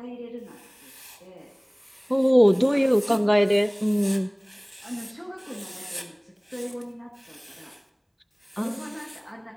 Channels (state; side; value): identical; both; correlation 1.00